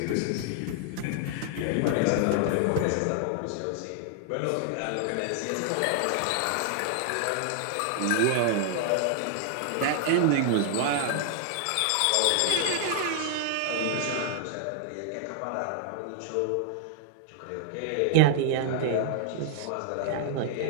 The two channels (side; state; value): both; different; correlation 0.00